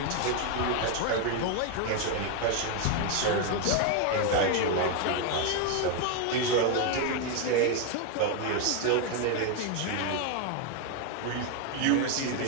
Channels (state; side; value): different; both; correlation 0.01